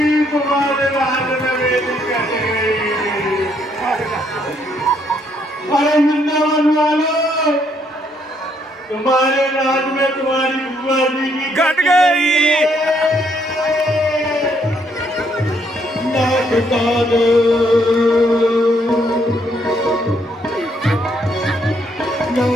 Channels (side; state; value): both; normal; correlation 0.71